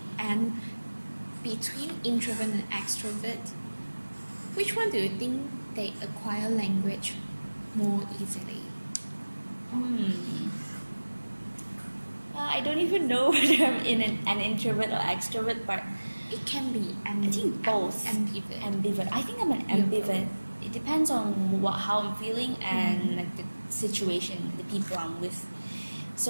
And between introvert and extrovert, which one do you think they acquire language more easily? I don't even know whether I'm in an introvert or extrovert, but It can be I think both. ambivert. I think I'm an ambivert. It depends on how I'm feeling and like the situation, the people I'm with.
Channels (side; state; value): both; inverted; correlation -1.00